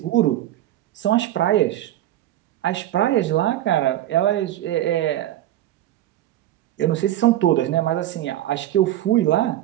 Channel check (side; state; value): left; quieter; 13.4 dB